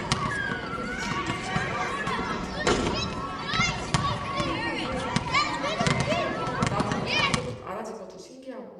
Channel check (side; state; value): both; identical; correlation 1.00